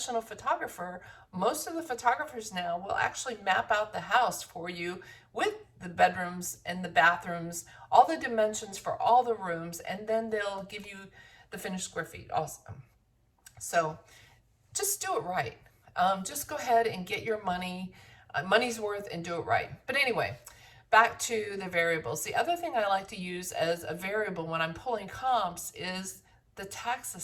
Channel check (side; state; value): both; identical; correlation 1.00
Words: photographer, most of the photographers now will actually map out the house for you with the bedrooms and the bathrooms, all the dimensions for all the rooms, and then they'll give you the finished square feet also. So just do it right. Just go ahead and get your money's worth, and do it right. But anyway, back to the variables. The other thing I like to use as a variable when I'm pulling comps is the tax